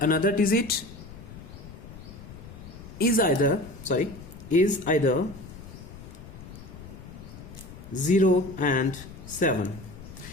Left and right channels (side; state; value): left; noise; rumble, 15 dB below the sound